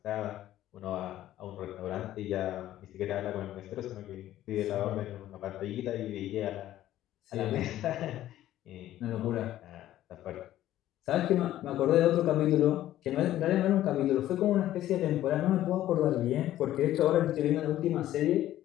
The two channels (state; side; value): quieter; right; 13.4 dB